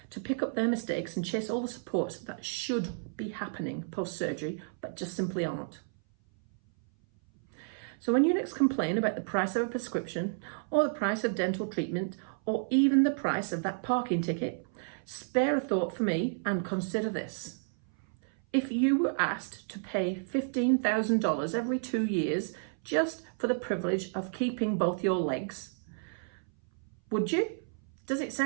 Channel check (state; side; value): silent; left; 57 dB below the other